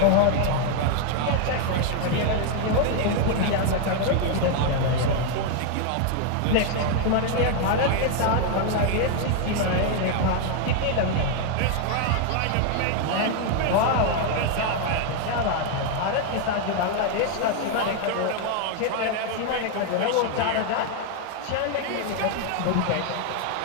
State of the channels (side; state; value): both; different; correlation 0.01